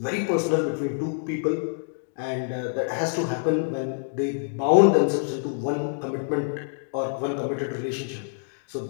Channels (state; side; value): silent; right; digital silence